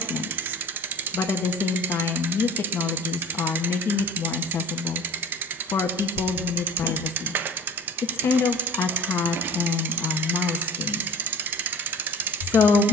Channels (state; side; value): normal; both; correlation 0.41